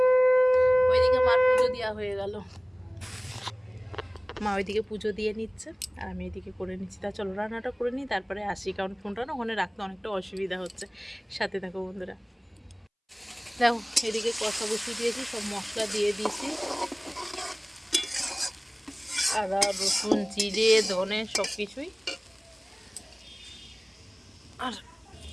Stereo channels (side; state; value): both; identical; correlation 1.00